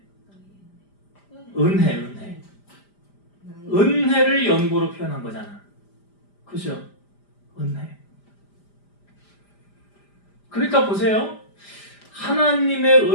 은혜를 연보로 표현한 거잖아. 그죠? 은혜. 그러니까 보세요. 하나님의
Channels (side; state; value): right; late; 5.0 ms